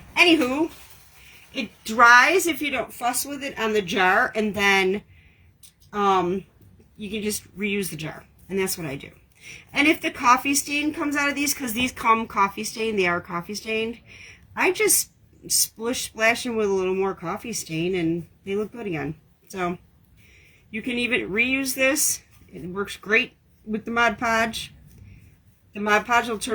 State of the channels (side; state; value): both; identical; correlation 1.00